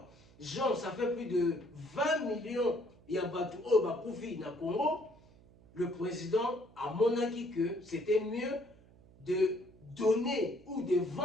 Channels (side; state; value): right; noise; hum, 25 dB below the sound